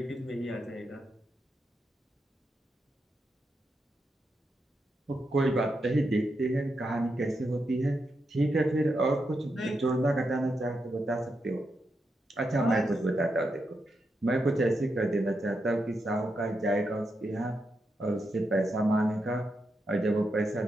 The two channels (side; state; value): both; normal; correlation 0.85